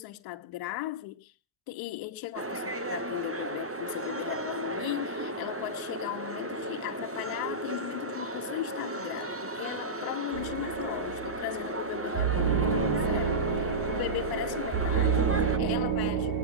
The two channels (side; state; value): both; normal; correlation -0.12